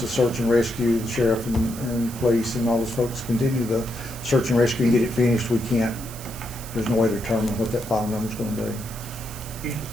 search and rescue, the sheriff and police and all those folks continue the search and rescue and get it finished, there's no way to determine what that final number is going to be.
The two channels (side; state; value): right; noise; hiss, 14 dB below the sound